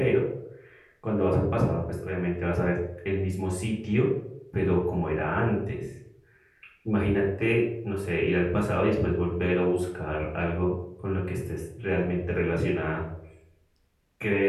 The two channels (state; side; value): identical; both; correlation 1.00